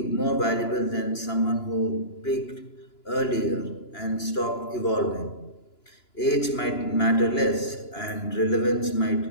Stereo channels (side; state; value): right; late; 2.9 ms